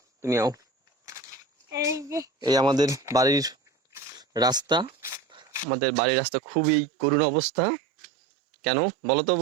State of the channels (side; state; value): left; drops out; at 5.7 s